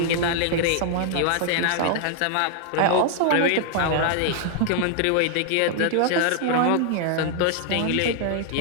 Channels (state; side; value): different; both; correlation 0.00